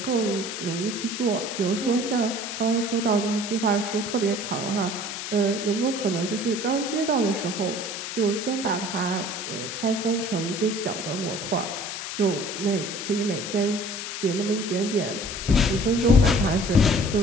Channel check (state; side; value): noise; left; hiss, 6 dB below the sound